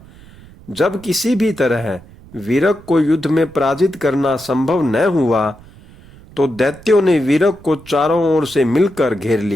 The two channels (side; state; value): right; noise; rumble, 22 dB below the sound